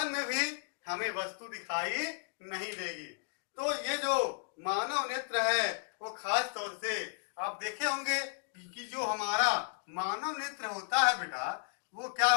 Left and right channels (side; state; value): right; silent; digital silence